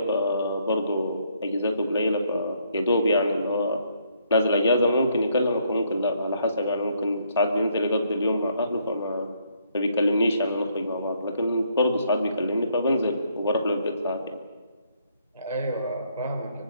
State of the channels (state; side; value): inverted; both; correlation -0.70